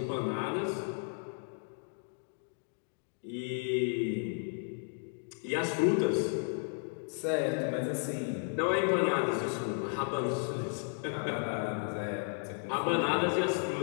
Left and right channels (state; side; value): silent; right; 55 dB below the other